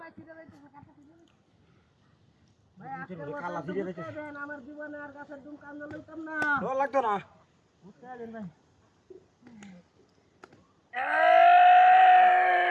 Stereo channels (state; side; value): identical; both; correlation 1.00